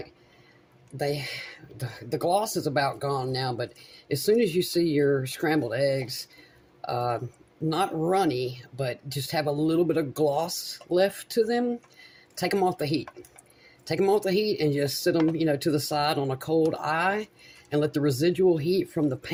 the gloss is about gone now, but as soon as you see your scrambled eggs, not runny, but just have a little bit of gloss left to them, take them off the heat. Take them off the heat and just sit them, to the side on a cold eye and let the residual heat from the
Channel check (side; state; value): both; identical; correlation 1.00